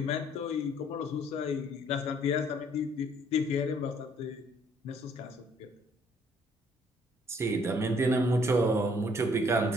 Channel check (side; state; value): both; normal; correlation 0.63